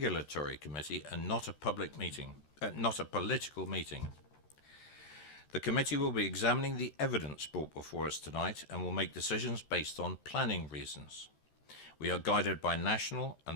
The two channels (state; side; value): late; right; 13 ms